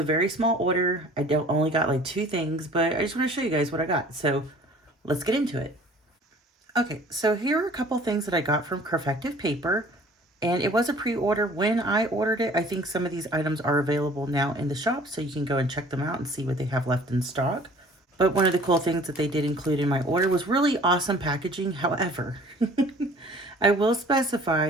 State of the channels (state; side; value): normal; both; correlation 0.51